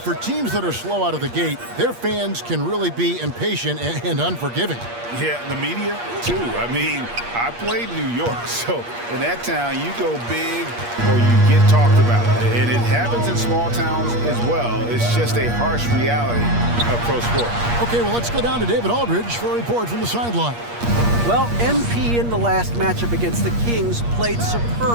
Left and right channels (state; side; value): late; left; 8.5 ms